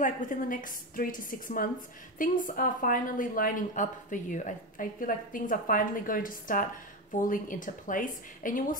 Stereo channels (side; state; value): both; normal; correlation 0.16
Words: like within the next 3 to 6 months, things are finally lining up for you. I feel like things are finally going to start falling into place, and you will